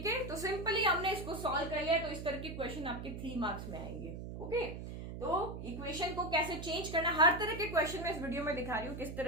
है। तो सिंपली हमने इसको सॉल्व कर लिया, तो इस तरह के क्वेश्चन आपके 3 मार्क्स में आएंगे, ओके। तो इक्वेशन को कैसे चेंज करना, हर तरह के क्वेश्चन में इस वीडियो में दिखा रही हूँ किस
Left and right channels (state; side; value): noise; right; hum, 8 dB below the sound